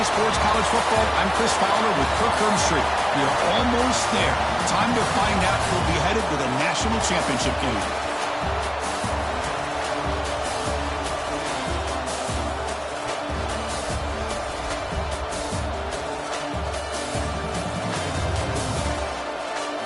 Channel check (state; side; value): identical; both; correlation 1.00